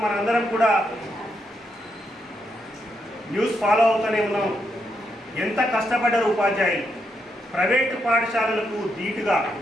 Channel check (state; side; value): normal; both; correlation 0.80